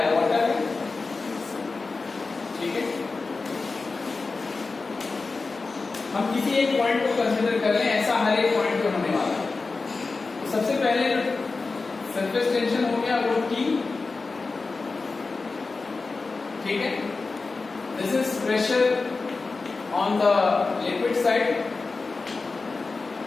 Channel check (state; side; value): quieter; right; 4.0 dB